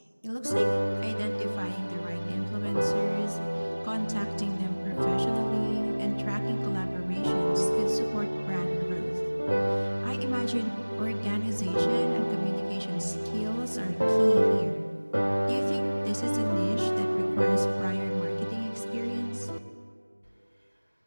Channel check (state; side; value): inverted; both; correlation -1.00